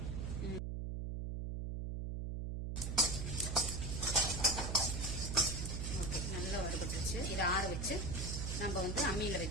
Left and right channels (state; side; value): noise; right; hum, 3 dB below the sound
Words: ஓகே, நல்லா வறுபட்டுருச்சு. இதை ஆற வச்சு நம்ம அம்மியில